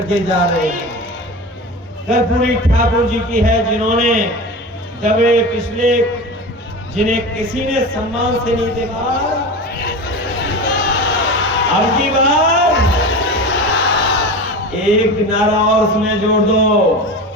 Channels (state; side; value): normal; both; correlation 0.28